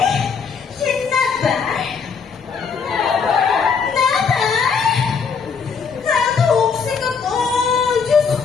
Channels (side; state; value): right; quieter; 5.8 dB